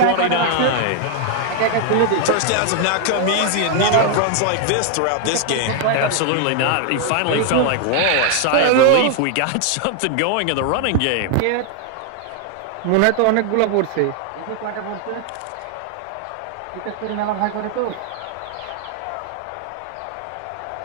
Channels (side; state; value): both; different; correlation 0.00